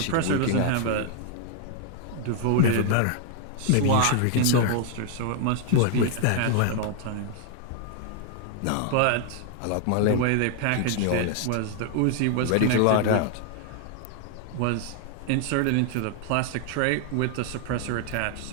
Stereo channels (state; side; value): different; both; correlation 0.00